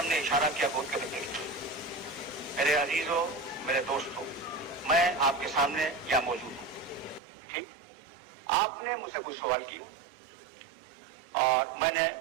ने इशारा किया गोद के बच्चे की। मेरे अजीजों, मेरे दोस्तों, मैं आपके सामने यहाँ मौजूद हूँ, ठीक? आपने मुझसे कुछ सवाल किए और मैंने,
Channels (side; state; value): left; drops out; at 7.2 s